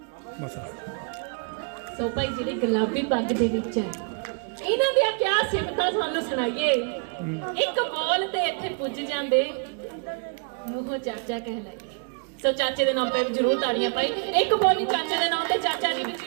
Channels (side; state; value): left; quieter; 38.3 dB